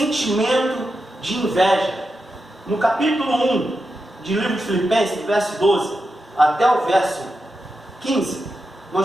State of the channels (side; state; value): both; normal; correlation 0.88